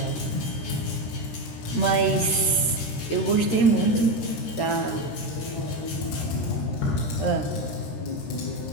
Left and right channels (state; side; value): late; right; 13 ms